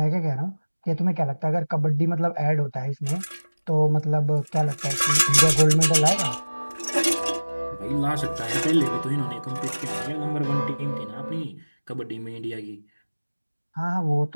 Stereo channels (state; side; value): inverted; both; correlation -1.00